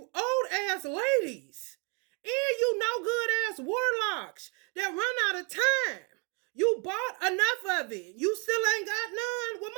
old ass ladies. And you no good ass warlocks that run out of time. You bought enough of it. You still ain't got none. Well,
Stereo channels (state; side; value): quieter; left; 34.4 dB